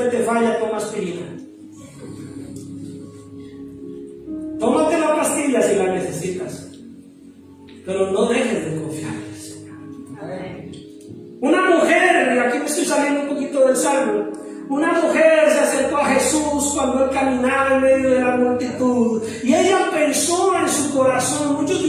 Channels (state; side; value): identical; both; correlation 1.00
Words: te falla, toma aspirina. Tómate la pastilla si la necesitas, pero no dejes de confiar en el Señor. Una mujer, y aquí me estoy saliendo un poquito del salmo, una mujer se acercó a Jesús cuando él caminaba en medio de la multitud y ella pensó en su corazón. Muchos de